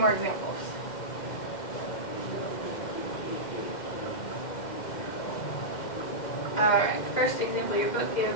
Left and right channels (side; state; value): right; late; 2.1 ms